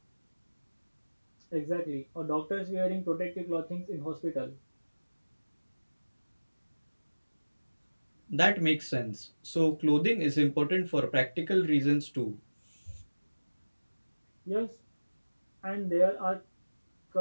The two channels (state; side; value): inverted; both; correlation -1.00